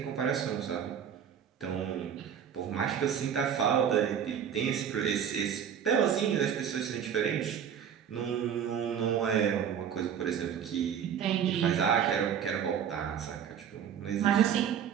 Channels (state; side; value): quieter; left; 8.4 dB